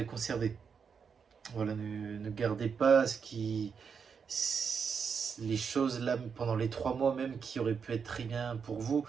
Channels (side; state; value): left; quieter; 6.3 dB